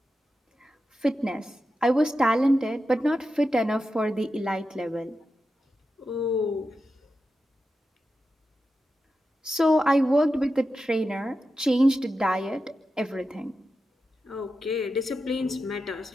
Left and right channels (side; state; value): both; normal; correlation 0.90